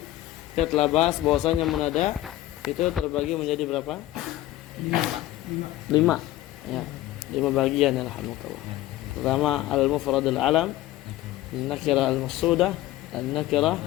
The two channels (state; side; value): quieter; right; 15.5 dB